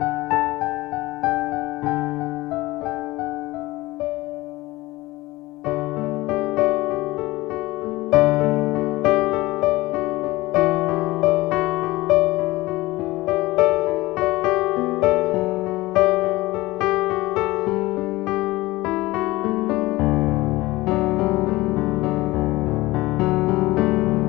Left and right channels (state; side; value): quieter; right; 19.6 dB